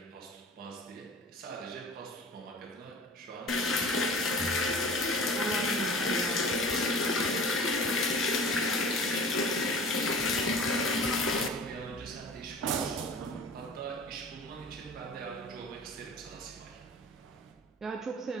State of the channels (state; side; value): normal; both; correlation 0.40